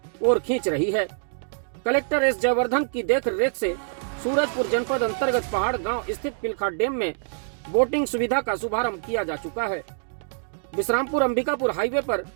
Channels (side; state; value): left; silent; digital silence